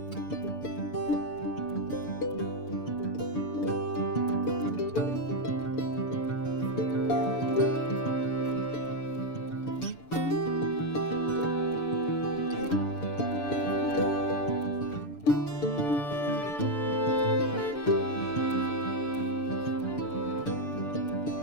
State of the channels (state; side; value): late; right; 6.9 ms